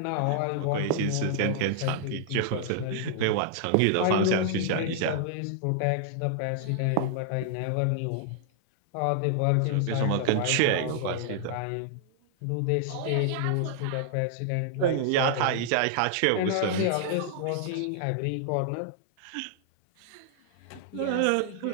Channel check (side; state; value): both; different; correlation -0.01